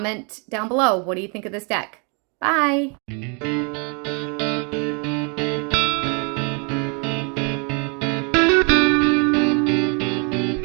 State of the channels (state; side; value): quieter; left; 35.2 dB